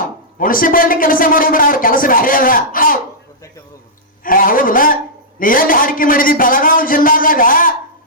ಮುನ್ಸಿಪಾಲಿಟಿ ಕೆಲಸ ಮಾಡೋದ್ರ ಅವ್ರ ಕೆಲಸ ಬೇರೆ ಅದ ಹೌದಲ್ಲ ನೀ ಎಲ್ಲಿ ಹಾಡಿಕೆ ಮಾಡಿದಿ ಬೆಳಗಾವಿ ಜಿಲ್ಲಾದಾಗ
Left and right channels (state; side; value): normal; both; correlation -0.13